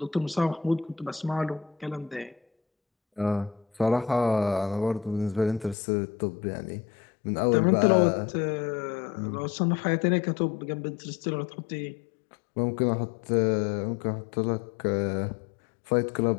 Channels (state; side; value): drops out; right; at 5.8 s